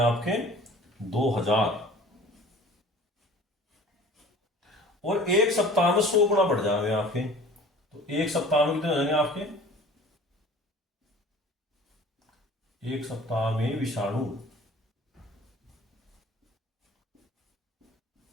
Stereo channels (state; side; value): normal; both; correlation 0.45